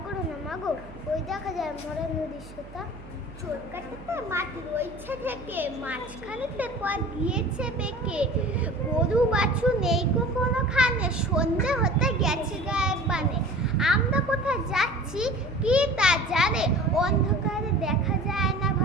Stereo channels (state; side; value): noise; right; hum, 17 dB below the sound